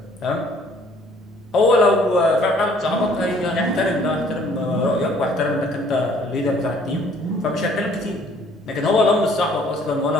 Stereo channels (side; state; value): both; normal; correlation 0.59